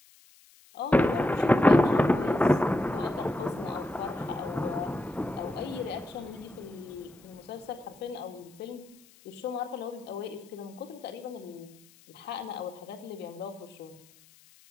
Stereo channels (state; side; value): noise; left; hiss, 27 dB below the sound